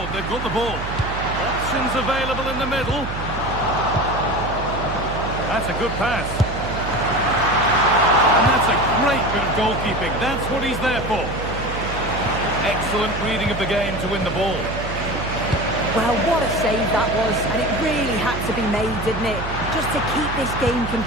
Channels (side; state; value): right; noise; hum, 7 dB below the sound